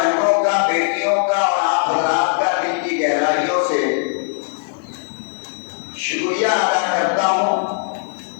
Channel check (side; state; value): right; silent; digital silence